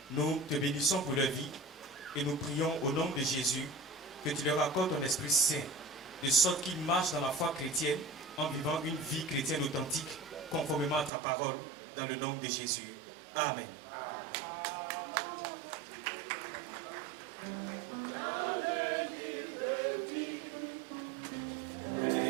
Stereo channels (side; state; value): left; drops out; at 11.1 s